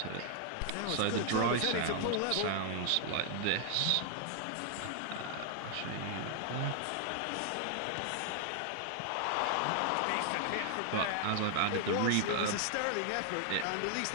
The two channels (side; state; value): both; different; correlation 0.00